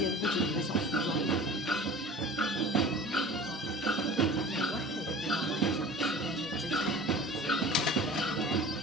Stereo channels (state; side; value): normal; both; correlation 0.39